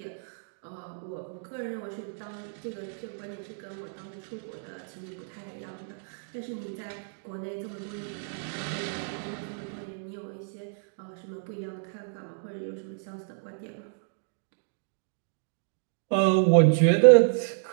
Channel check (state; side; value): silent; left; digital silence